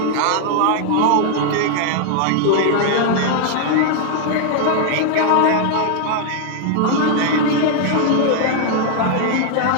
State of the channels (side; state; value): both; different; correlation 0.00